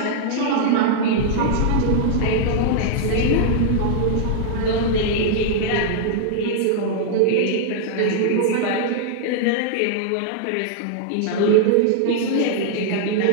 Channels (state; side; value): different; both; correlation -0.01